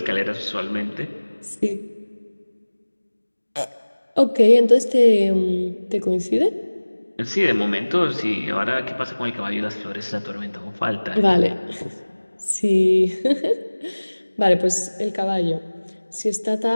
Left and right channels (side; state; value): both; inverted; correlation -1.00